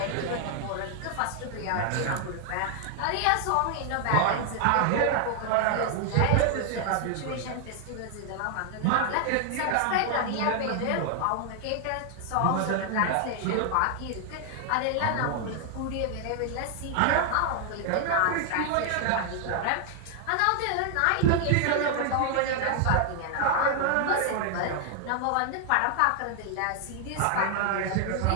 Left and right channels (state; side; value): different; both; correlation 0.00